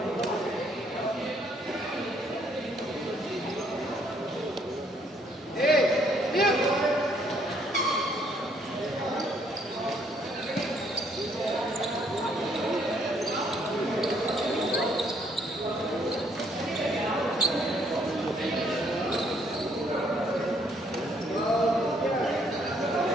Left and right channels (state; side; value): normal; both; correlation 0.67